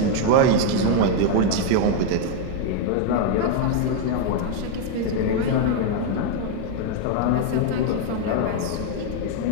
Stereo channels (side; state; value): both; different; correlation 0.00